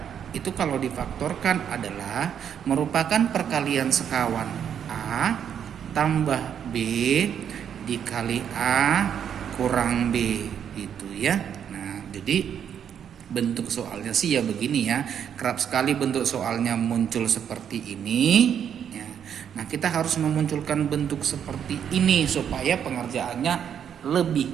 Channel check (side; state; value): left; quieter; 8.6 dB